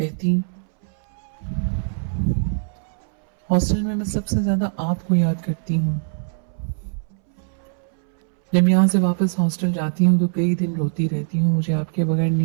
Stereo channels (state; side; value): silent; left; 64 dB below the other